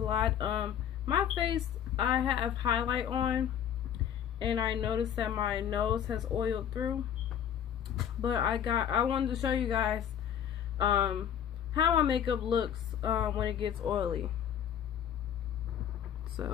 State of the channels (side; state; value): right; quieter; 9.3 dB